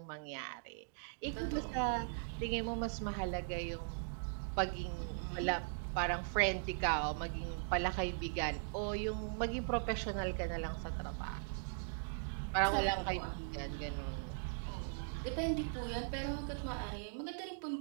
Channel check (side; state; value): left; silent; digital silence